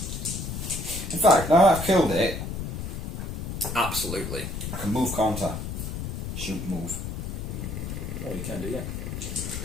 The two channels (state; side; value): noise; left; rumble, 5 dB below the sound